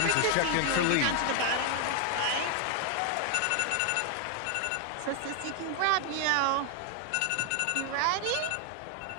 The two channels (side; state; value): both; different; correlation 0.00